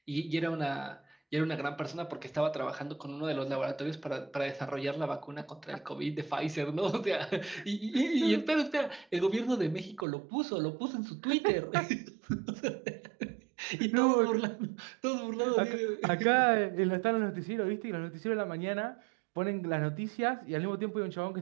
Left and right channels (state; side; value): drops out; left; at 10.1 s